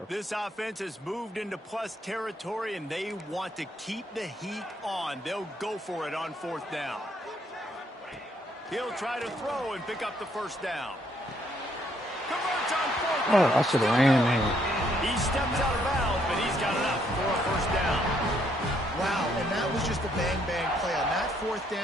This offense has moved into plus territory, and they want to keep the heat on. They'll go for it on 4th down. He'll try to throw and pick up the 1st down. Converts on 4th down. Oh, I should have ran there. He steps out of bounds, but he's got enough for a 1st down. Wow, and that was just a bang-bang play. On that 4th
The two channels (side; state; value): both; normal; correlation 0.70